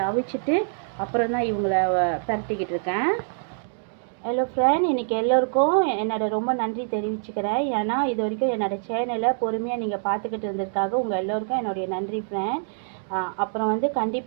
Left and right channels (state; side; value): silent; left; digital silence